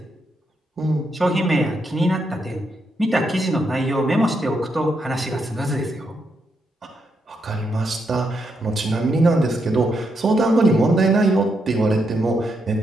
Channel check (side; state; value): both; normal; correlation 0.80